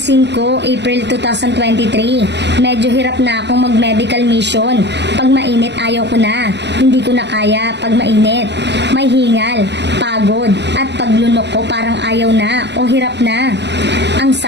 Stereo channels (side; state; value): left; late; 0.50 ms